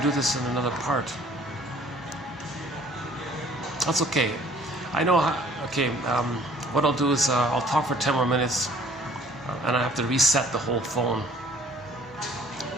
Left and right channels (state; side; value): normal; both; correlation 0.55